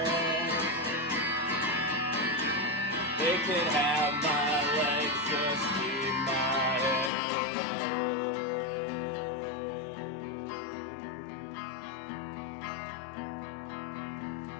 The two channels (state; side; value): drops out; right; at 7.1 s